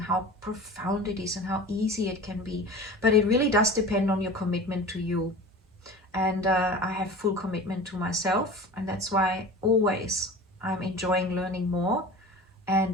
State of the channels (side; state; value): both; normal; correlation 0.36